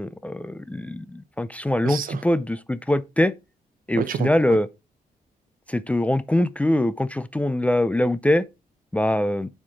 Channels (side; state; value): both; normal; correlation 0.93